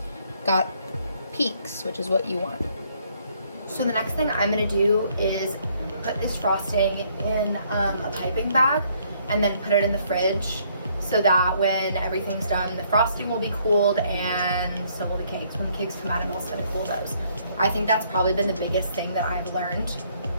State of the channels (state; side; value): inverted; both; correlation -0.66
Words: Got peaks, which is what you want. So the next thing I'm gonna do is put this frosting in a piping bag and then put it in the fridge so that when everything's done, the frosting will be cooled and so will the cakes. When the cakes come out, I'm also gonna cool those. I think that's probably been the biggest thing that I've learned,